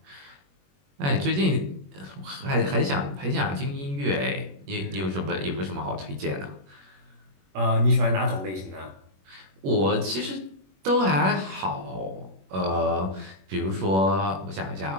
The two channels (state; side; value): late; left; 21 ms